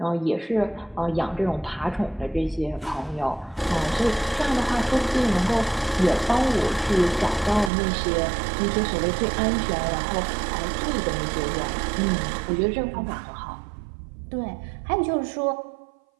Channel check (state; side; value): drops out; left; at 7.7 s